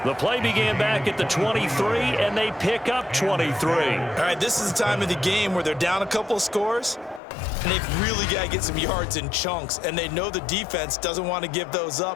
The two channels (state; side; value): drops out; right; at 7.2 s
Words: The play began back at the 23, and they pick up 23. All right, this is the time of the game where they're down a couple of scores, and they've really got to get some yards in chunks, and they know the defense doesn't want to give those